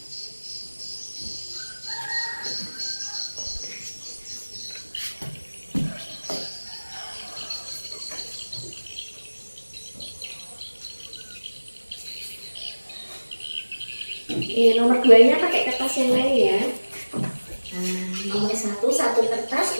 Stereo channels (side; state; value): both; inverted; correlation -1.00